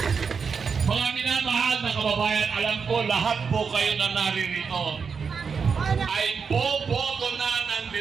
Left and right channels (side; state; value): left; quieter; 5.8 dB